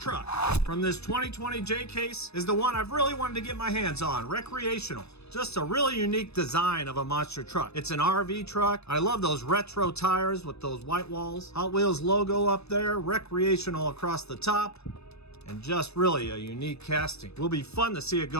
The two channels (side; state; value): right; late; 0.79 ms